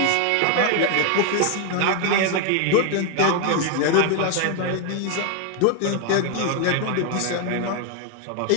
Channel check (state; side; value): different; both; correlation 0.01